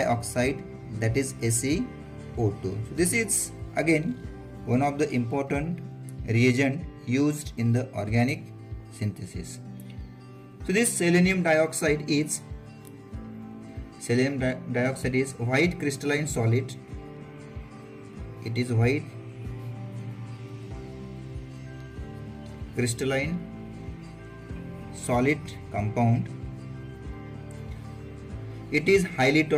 that is SeO2. So this is again one of the important reagent used in the organic synthesis. So this selenium dioxide is white crystalline solid. It is white crystalline solid compound. It is highly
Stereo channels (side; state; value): both; identical; correlation 1.00